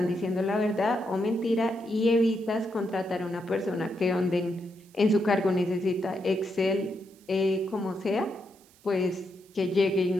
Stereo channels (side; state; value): right; noise; hiss, 29 dB below the sound